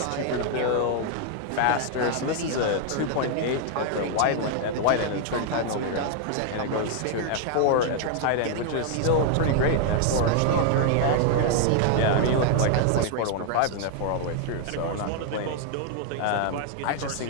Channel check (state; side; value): different; both; correlation 0.00